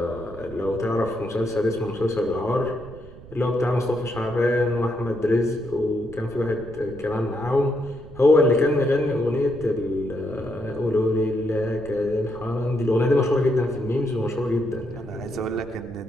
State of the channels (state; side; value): noise; right; rumble, 18 dB below the sound